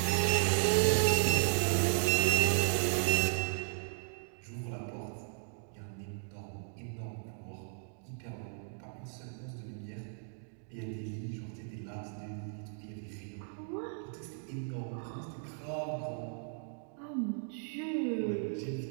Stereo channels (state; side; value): silent; left; digital silence